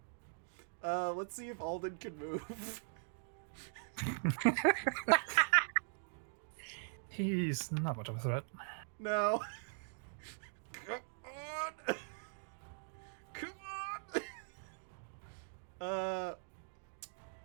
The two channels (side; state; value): left; silent; digital silence